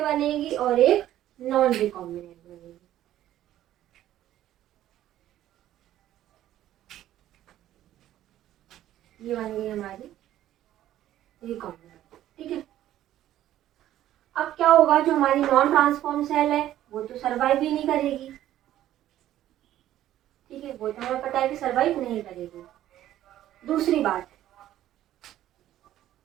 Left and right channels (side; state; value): left; quieter; 12.9 dB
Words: बनेगी और एक नॉन रिकॉम्बिनेंट बनेगी। ये बन गई हमारी रिकॉम्बिनेंट। ठीक है, अब क्या होगा, जो हमारी नॉन ट्रांसफॉर्म सेल है वो तो सर्वाइव ही नहीं करेगी। ठीक है, वो तो हमें पता है कि सर्वाइव नहीं करेगी। दूसरी बात,